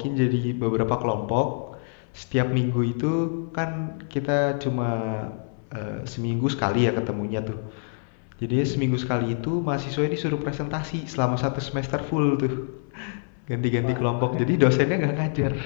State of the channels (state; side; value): silent; right; 61 dB below the other